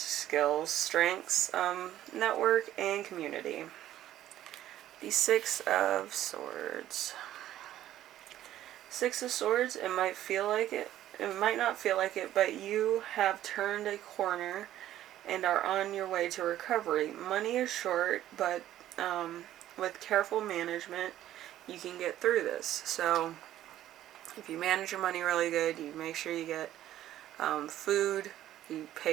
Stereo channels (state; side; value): quieter; left; 12.8 dB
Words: strengths, network, and community. The 6 of Swords. 6 of Swords, it might feel like it. It might not feel like it, but you have turned a corner and are on your way to recovery. Money is short, but with careful management, you can get through this. So If you manage your money really good, you make sure you get food, you